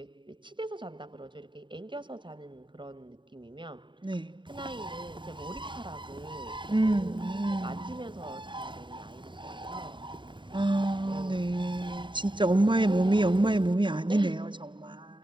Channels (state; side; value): late; left; 0.23 ms